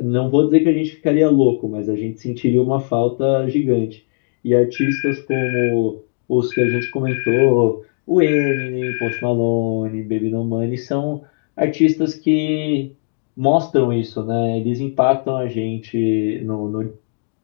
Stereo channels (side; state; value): right; silent; 67 dB below the other